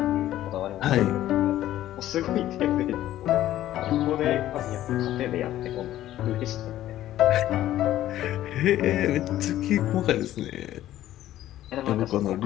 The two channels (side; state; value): right; quieter; 13.4 dB